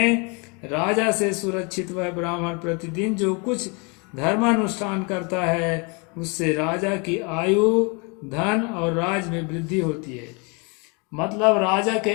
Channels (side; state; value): right; quieter; 31.8 dB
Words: राजा से सुरक्षित वह ब्राह्मण प्रतिदिन जो कुछ धर्मानुष्ठान करता है उससे राजा की आयु, धन और राज में वृद्धि होती है। मतलब राजा